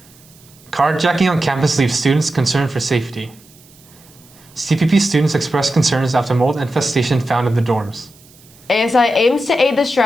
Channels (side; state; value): right; noise; hiss, 26 dB below the sound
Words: Carjacking on campus leaves students concerned for safety. CPP students expressed concerns after mold infestation found in the dorms. ASI aims to aid the